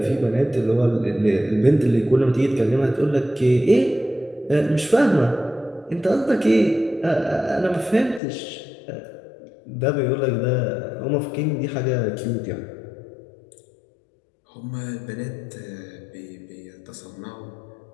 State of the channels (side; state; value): right; drops out; at 8.2 s